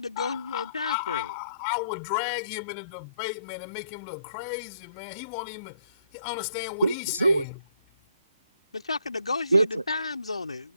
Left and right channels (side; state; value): both; inverted; correlation -0.69